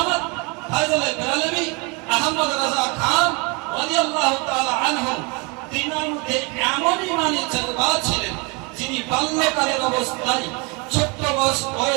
ফয়জুল বেরেলভী আহমদ রাজা খান রাদিয়াল্লাহু তাআলা আনহু। তিনার মধ্যে এমন ঈমানের জজবা ছিলেন, যিনি বাল্যকালের অবস্থায় ছোট্ট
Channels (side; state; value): left; quieter; 30.1 dB